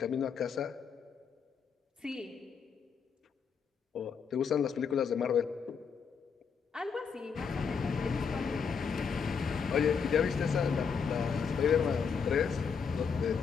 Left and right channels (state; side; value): quieter; right; 6.2 dB